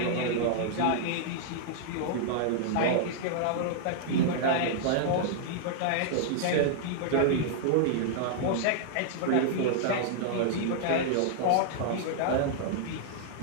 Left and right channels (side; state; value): both; different; correlation -0.01